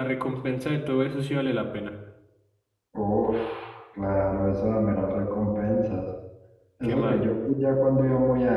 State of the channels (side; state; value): both; identical; correlation 1.00